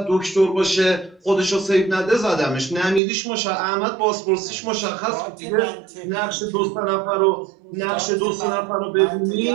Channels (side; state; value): left; drops out; at 3.0 s